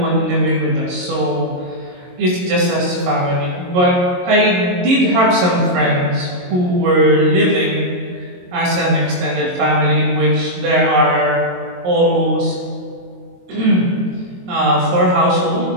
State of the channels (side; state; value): left; late; 22 ms